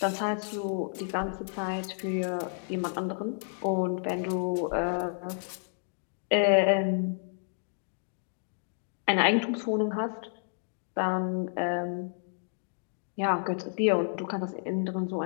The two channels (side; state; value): right; silent; digital silence